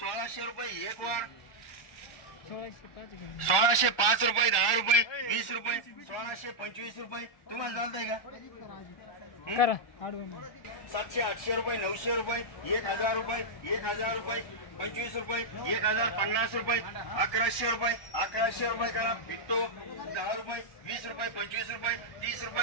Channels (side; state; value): right; late; 1.2 ms